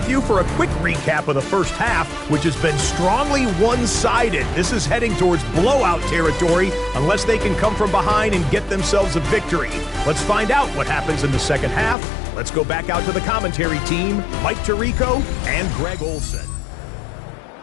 you for a quick recap of the first half, which has been strongly one-sided. This is heading towards blowout territory unless they can come from behind and get themselves a victory. Let's find out what happens in the second half. Let's go back out to the commentary team, Mike Tirico and Greg Olson.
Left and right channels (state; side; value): drops out; right; at 12.0 s